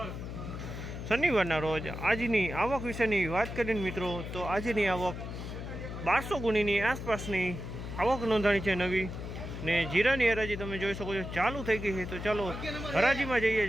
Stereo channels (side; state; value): left; noise; hum, 7 dB below the sound